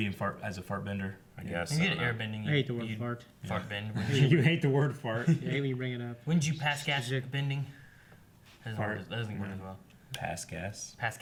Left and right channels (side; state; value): both; identical; correlation 1.00